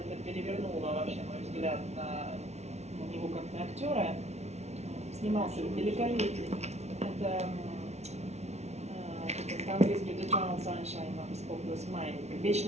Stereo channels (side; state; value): left; late; 0.32 ms